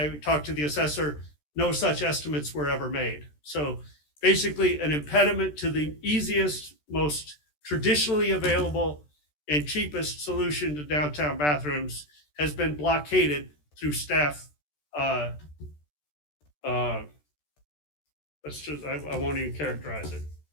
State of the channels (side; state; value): right; late; 13 ms